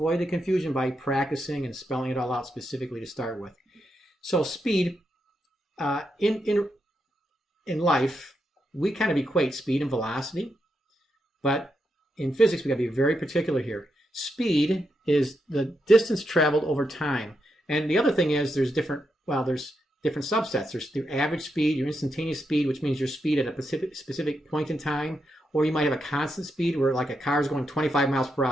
the confusion by practicing and spelling it all out specifically to start with. So speed, in life, we kind of equate speed and velocity, but in physics, we got to be very particular here. Speed is the distance traveled over time. And the other thing is there's different subsets. There's your average speed, your instantaneous speed, which means your speed at a specific point in time, or you might have a constant speed where like a car is going 25 miles per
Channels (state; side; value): normal; both; correlation 0.83